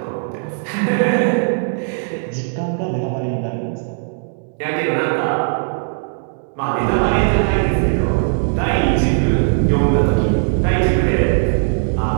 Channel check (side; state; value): left; silent; digital silence